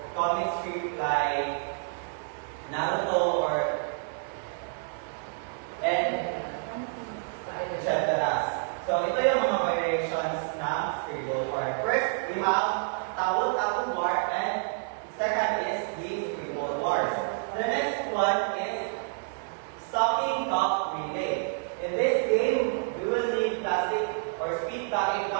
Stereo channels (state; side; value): silent; left; 59 dB below the other